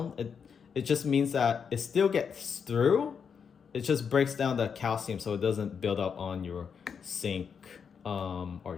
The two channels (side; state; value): right; quieter; 6.6 dB